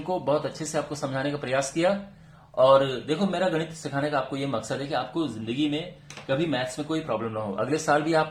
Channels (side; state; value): both; identical; correlation 1.00